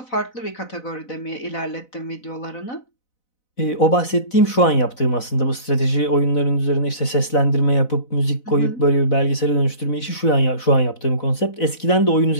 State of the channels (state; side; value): late; right; 4.0 ms